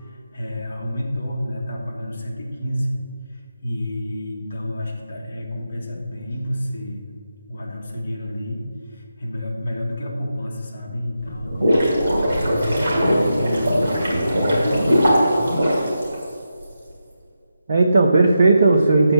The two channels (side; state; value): both; inverted; correlation -0.87